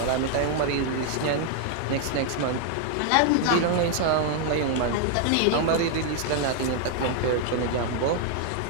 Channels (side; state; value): both; different; correlation 0.00